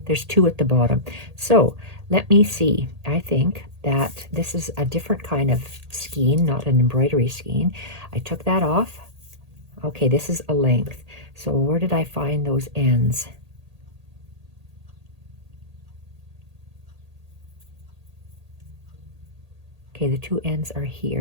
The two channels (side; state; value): left; late; 1.8 ms